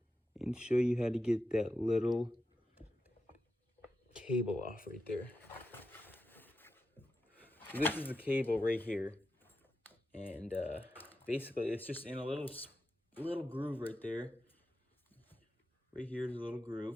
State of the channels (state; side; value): normal; both; correlation 0.89